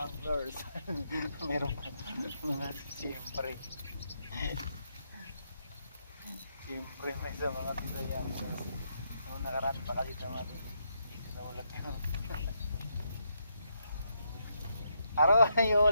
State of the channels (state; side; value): inverted; both; correlation -0.79